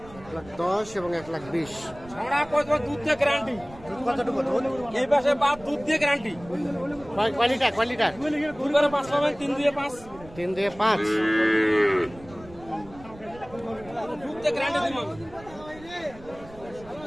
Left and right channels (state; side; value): noise; right; rumble, 20 dB below the sound